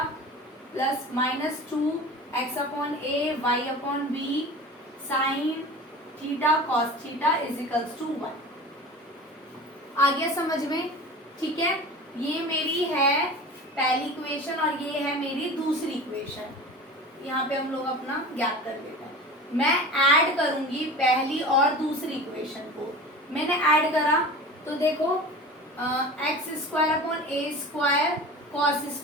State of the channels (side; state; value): both; normal; correlation 0.35